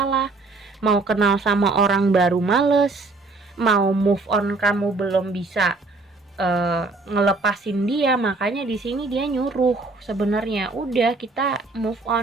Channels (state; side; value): quieter; left; 3.6 dB